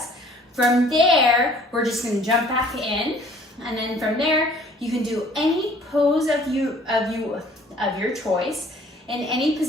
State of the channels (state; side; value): normal; both; correlation 0.54